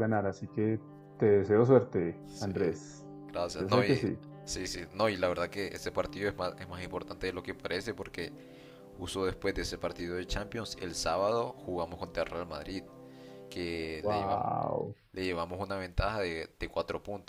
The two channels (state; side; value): identical; both; correlation 1.00